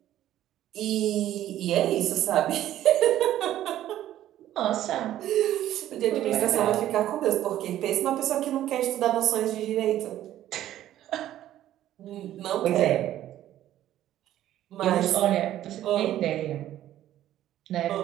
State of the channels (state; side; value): quieter; left; 12.8 dB